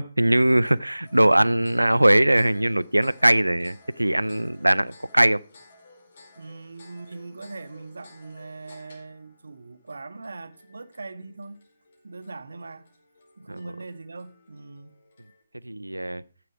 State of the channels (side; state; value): both; inverted; correlation -0.99